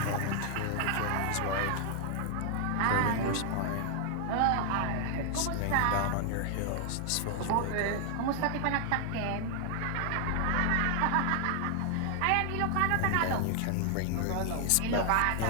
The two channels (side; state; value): both; different; correlation 0.00